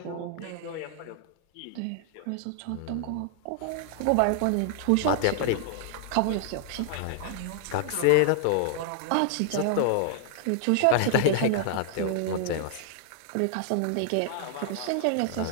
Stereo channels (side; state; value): both; different; correlation -0.01